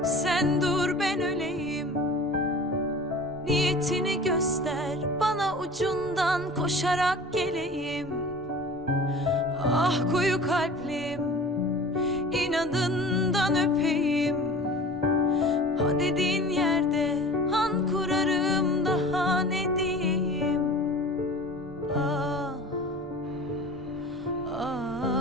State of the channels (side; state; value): both; normal; correlation 0.40